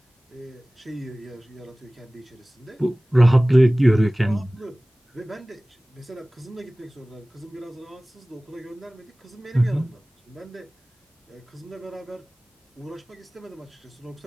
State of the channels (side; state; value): both; normal; correlation 0.98